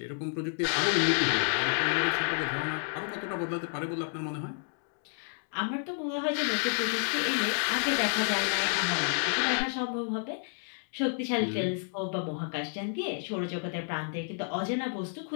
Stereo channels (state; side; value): silent; right; 58 dB below the other